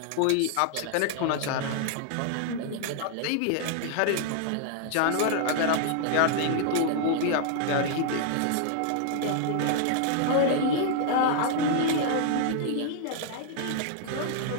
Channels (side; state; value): both; different; correlation 0.00